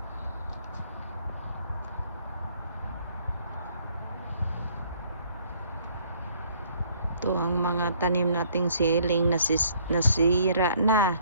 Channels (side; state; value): both; inverted; correlation -0.61